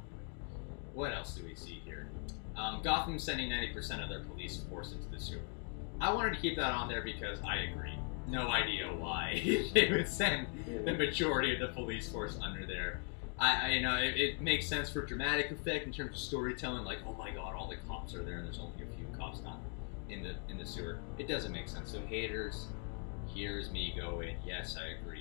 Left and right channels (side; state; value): right; quieter; 39.5 dB